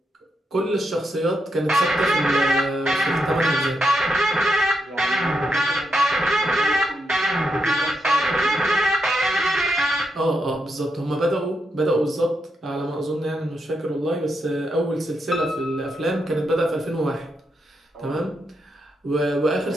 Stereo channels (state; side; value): normal; both; correlation 0.83